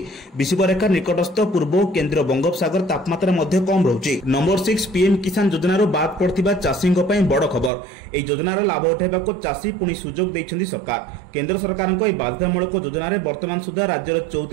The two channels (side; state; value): left; drops out; at 7.7 s